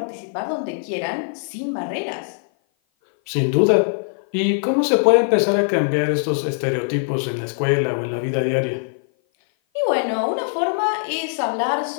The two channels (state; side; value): silent; right; 56 dB below the other